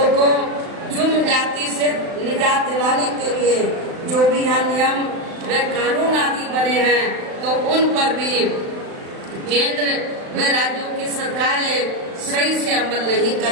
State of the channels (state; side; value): late; left; 35 ms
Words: को जुर्म जाति से निजात दिलाने के लिए जो भी यहाँ नियम व कानून आदि बने हैं, तो उन पर भी केंद्र व राज्यों की सरकारें सही से अमल नहीं